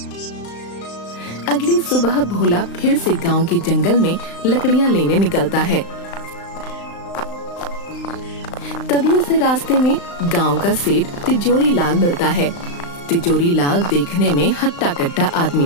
अगली सुबह भोला फिर से गांव के जंगल में लकड़ियां लेने निकलता है। तभी उसे रास्ते में गांव का सेठ तिजोरी लाल मिलता है। तिजोरी लाल देखने में हट्टा कट्टा आदमी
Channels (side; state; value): right; late; 35 ms